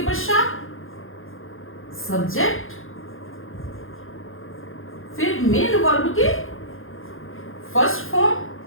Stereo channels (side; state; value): right; late; 0.59 ms